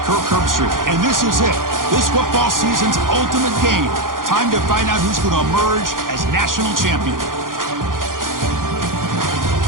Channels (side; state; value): left; late; 0.90 ms